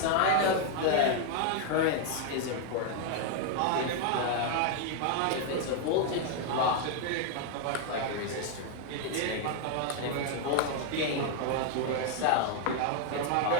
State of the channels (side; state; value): both; different; correlation 0.00